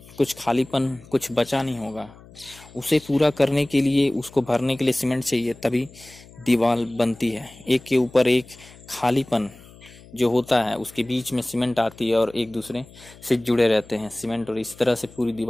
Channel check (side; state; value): left; noise; hum, 22 dB below the sound